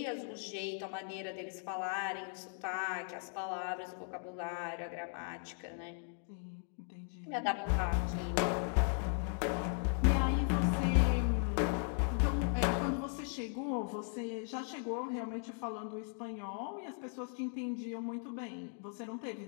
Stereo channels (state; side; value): silent; right; 53 dB below the other